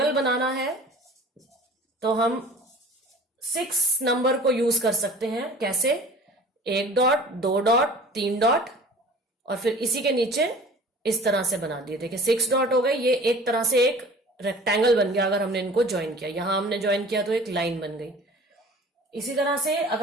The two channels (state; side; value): normal; both; correlation 0.45